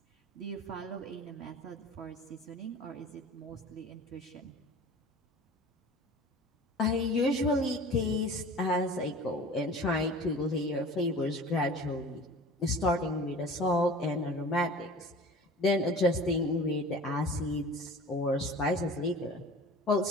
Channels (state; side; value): normal; both; correlation 0.41